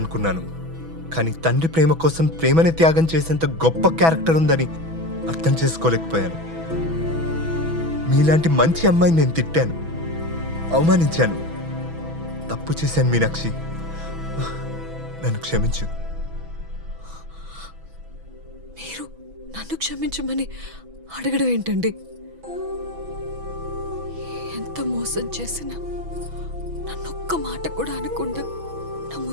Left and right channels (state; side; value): late; left; 6.1 ms